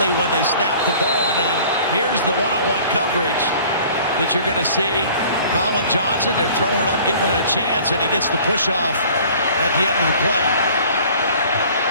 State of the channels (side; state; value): both; inverted; correlation -0.49